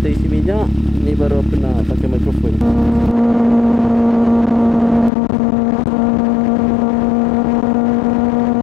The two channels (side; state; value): right; drops out; at 5.1 s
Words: isi minyak. Ni baru aku nak pakai mikrofon.